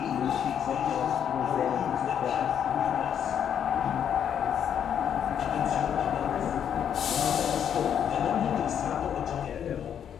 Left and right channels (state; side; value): quieter; right; 8.8 dB